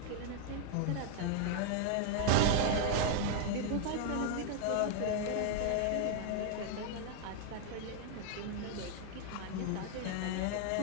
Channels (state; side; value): different; both; correlation 0.00